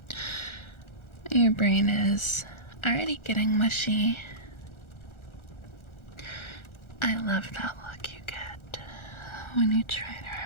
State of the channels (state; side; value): late; right; 1.4 ms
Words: Your brain is already getting mushy. I love that look you get when you try to